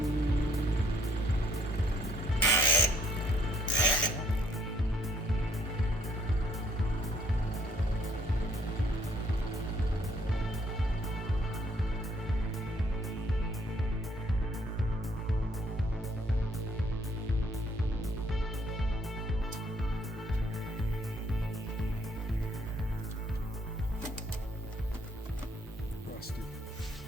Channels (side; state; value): both; normal; correlation 0.65